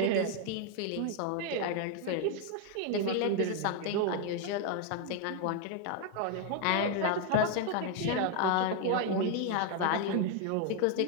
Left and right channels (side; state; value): both; different; correlation 0.01